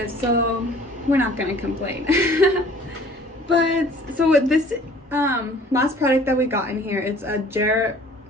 so we're not gonna complain. But so with this last product that we got in here, it's a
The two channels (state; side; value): normal; both; correlation 0.52